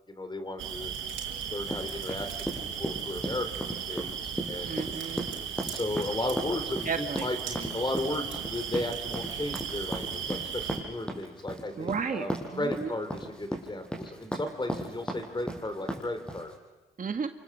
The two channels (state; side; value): normal; both; correlation 0.60